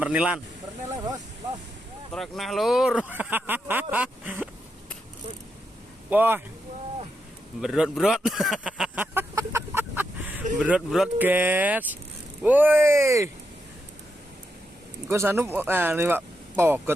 bos. Los. Trek nah lur. Wah. Berot. Berot guys. Woi. Engko sanu nih Pak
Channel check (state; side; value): normal; both; correlation 0.84